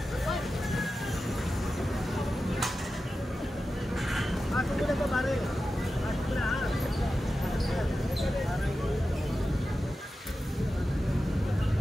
Pasok mo na po, pare. Pasok mo na, ha?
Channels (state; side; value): normal; both; correlation 0.92